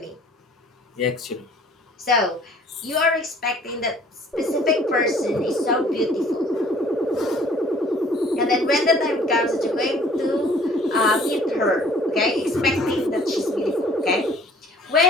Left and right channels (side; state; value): both; normal; correlation 0.54